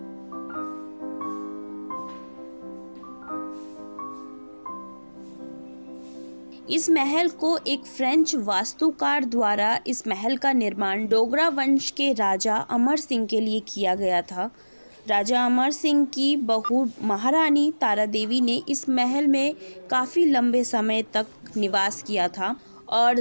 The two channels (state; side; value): inverted; both; correlation -1.00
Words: इस महल को एक फ्रेंच वास्तुकार द्वारा इस महल का निर्माण डोगरा वंश के राजा अमर सिंह के लिए किया गया था। राजा अमर सिंह की बहू महारानी तारा देवी ने इस महल में काफ़ी लंबे समय तक निवास किया था और